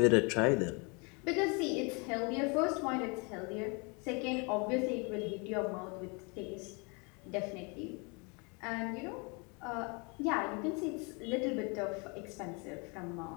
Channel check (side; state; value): right; quieter; 31.6 dB